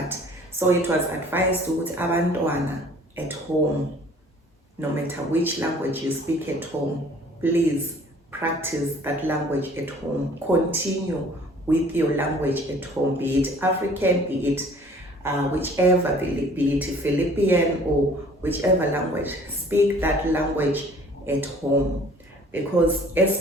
so it was advised to abantwana at home, no matter which language you speak at home, please practice that language at home. Continue with your language at home, be it African, be it whichever, be it Philippine or whichever language. Speak that language at home. Because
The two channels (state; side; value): normal; both; correlation 0.52